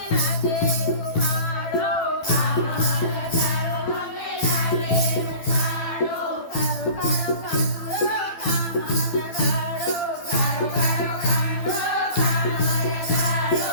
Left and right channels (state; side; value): late; right; 12 ms